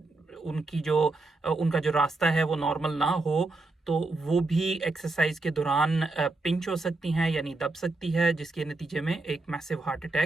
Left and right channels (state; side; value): quieter; left; 3.2 dB